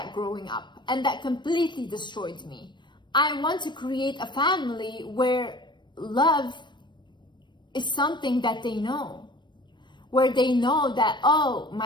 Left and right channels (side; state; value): right; late; 0.22 ms